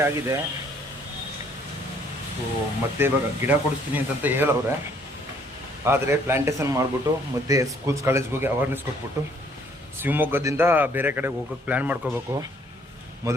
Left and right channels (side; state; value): both; normal; correlation 0.63